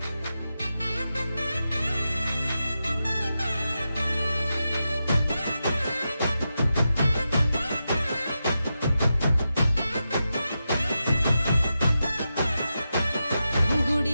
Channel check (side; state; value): both; inverted; correlation -0.89